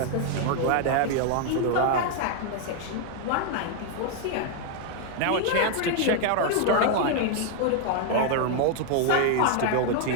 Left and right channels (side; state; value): both; different; correlation 0.00